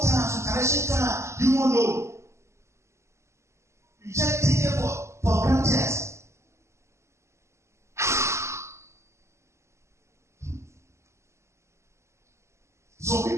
times, some challenging times, you won't know. You just take it for granted. Some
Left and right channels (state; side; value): late; left; 0.13 ms